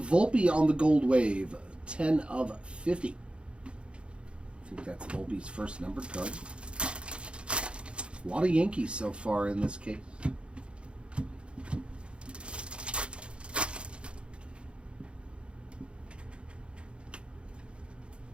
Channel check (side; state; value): left; late; 0.057 ms